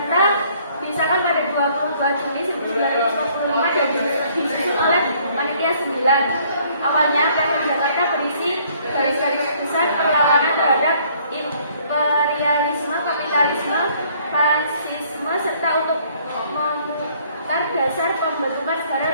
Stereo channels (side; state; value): both; inverted; correlation -0.62